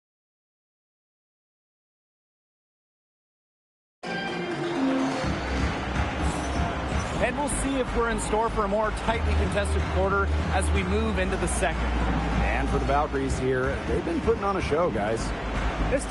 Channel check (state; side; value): identical; both; correlation 1.00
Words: And we'll see if we're in store for a more tightly contested quarter as we move into the second. And for the Valkyries here, they've been putting on a show, guys. This